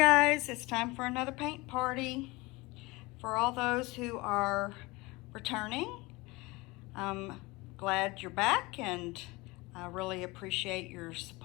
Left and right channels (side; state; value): right; quieter; 23.2 dB